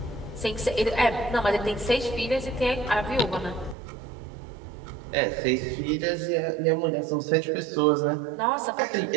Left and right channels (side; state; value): left; drops out; at 3.8 s